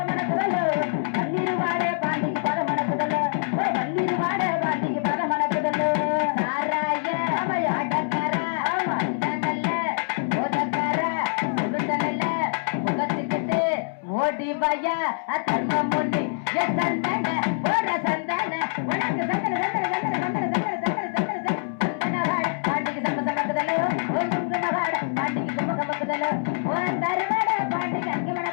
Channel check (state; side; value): silent; right; 62 dB below the other